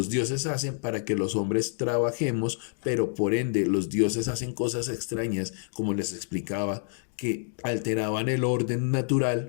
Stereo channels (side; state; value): right; silent; digital silence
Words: dioses hacen para que los hombres trabajemos, pero por ende los dioses hacen cosas extrañas, como les explicaba, que alteraban el orden